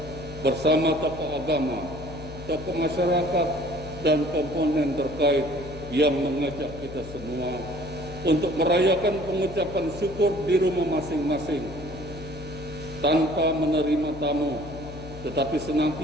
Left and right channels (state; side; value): noise; left; hum, 13 dB below the sound